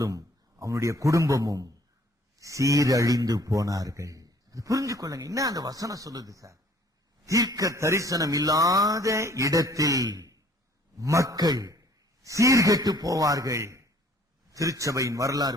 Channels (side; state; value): both; normal; correlation 0.57